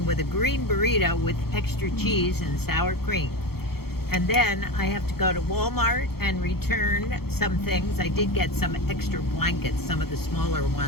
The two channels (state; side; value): late; right; 0.95 ms